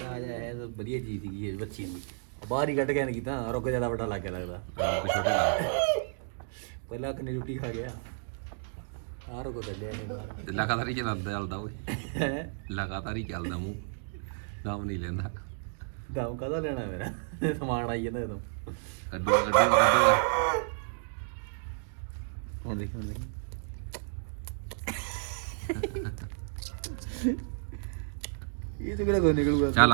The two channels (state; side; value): silent; left; digital silence